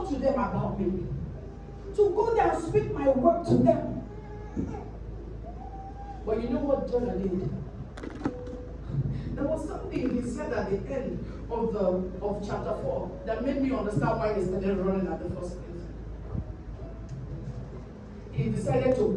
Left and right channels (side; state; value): both; identical; correlation 1.00